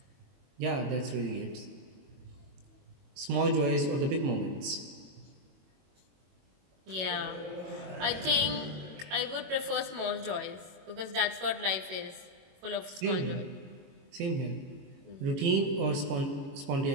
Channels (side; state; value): left; late; 21 ms